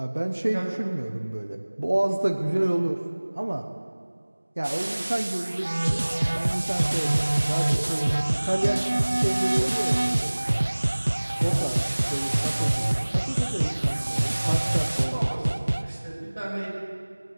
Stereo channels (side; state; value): both; inverted; correlation -1.00